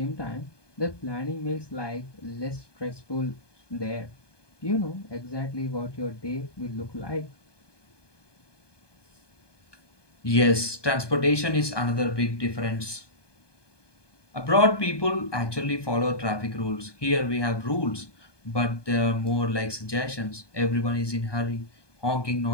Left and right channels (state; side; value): late; right; 1.2 ms